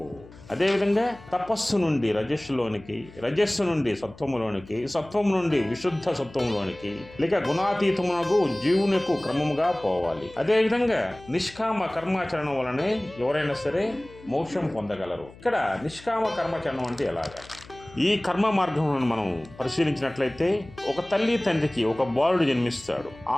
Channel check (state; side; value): noise; left; hum, 21 dB below the sound